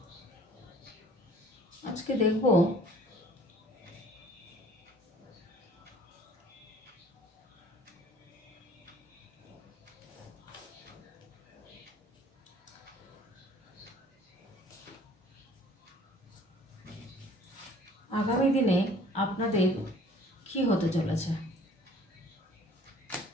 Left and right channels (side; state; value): both; normal; correlation 0.53